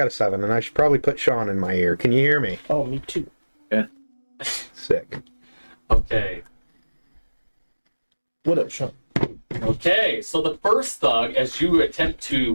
a 7, and I should probably put Sean in my ear. Can you hear me? Oh, me too. Sick. Okay. What up, Sean? Okay, so the first thug, as you attempt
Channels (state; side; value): inverted; both; correlation -1.00